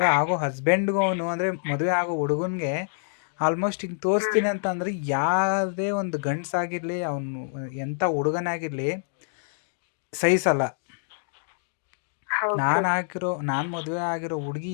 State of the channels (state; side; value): silent; right; digital silence